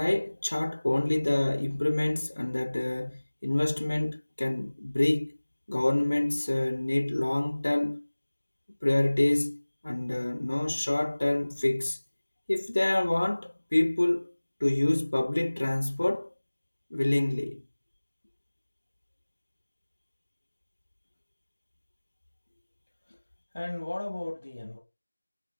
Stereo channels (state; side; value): inverted; both; correlation -1.00